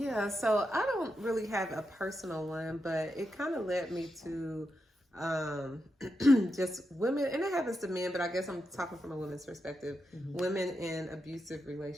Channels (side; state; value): both; normal; correlation 0.86